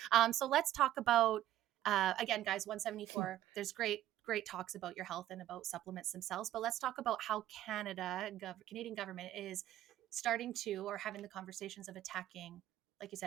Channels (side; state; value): left; quieter; 13.3 dB